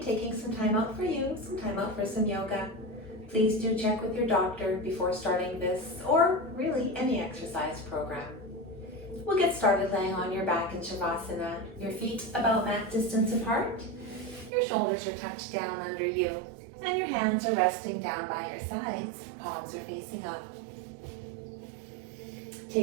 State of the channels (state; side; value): drops out; left; at 14.5 s